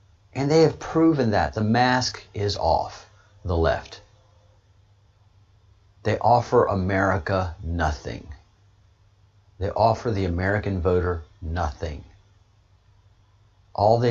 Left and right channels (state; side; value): identical; both; correlation 1.00